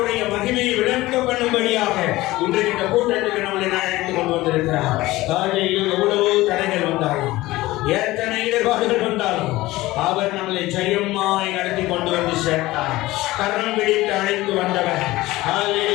மகிமையை விளங்க பண்ணும்படியாக இன்றைக்கு இந்த கூட்டத்துக்கு நம்மளை அழைத்துக் கொண்டு வந்திருக்கிறார். எவ்வளவோ தடைகள் வந்தாலும், எத்தனை இடர்பாடுகள் வந்தாலும் அவர் நம்மளை ஜெயமாய் நடத்தி கொண்டு வந்து சேர்த்தார். கரம் பிடித்து அழைத்து வந்தவர்.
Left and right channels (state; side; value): quieter; right; 18.4 dB